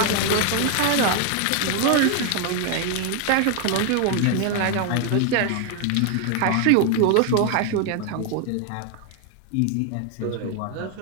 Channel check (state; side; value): different; both; correlation 0.01